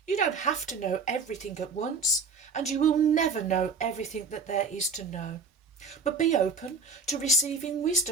You don't have to know everything at once, and you will never know everything that there is to know. But be open to receiving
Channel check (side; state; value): left; quieter; 4.6 dB